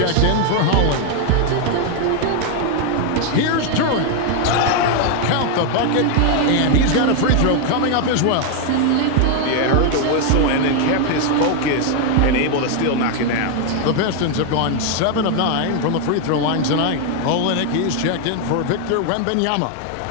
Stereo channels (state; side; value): different; both; correlation 0.00